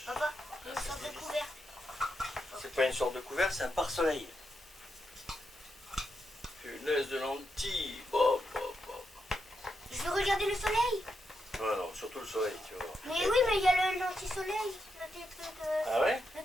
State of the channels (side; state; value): both; normal; correlation 0.84